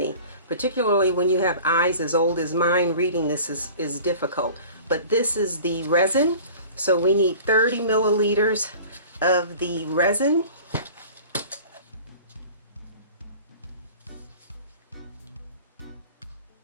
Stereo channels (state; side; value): inverted; both; correlation -0.43